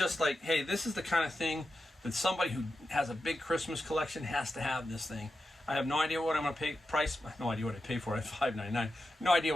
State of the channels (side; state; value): both; normal; correlation 0.90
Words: like, hey, this is the kind of thing that somebody who has a big Christmas collection has to have this thing. I have no idea what I'm going to pay. No idea what I pay for it. $5.99. No idea